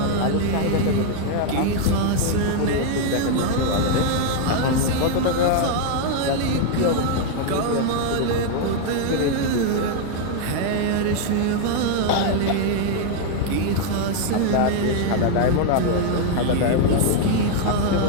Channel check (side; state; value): both; different; correlation 0.00